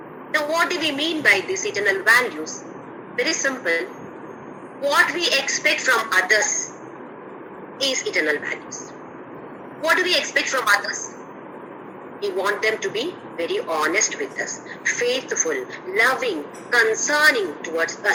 So what do we mean by these eternal values? Very simple. What we expect from others is eternal values. What do we expect from others? We want them to be very honest with us, faithful, loving, concerning towards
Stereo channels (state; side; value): identical; both; correlation 1.00